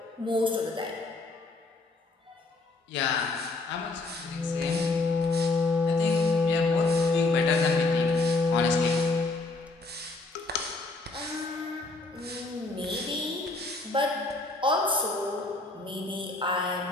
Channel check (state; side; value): quieter; right; 3.3 dB